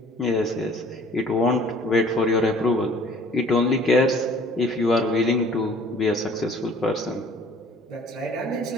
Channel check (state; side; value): normal; both; correlation 0.53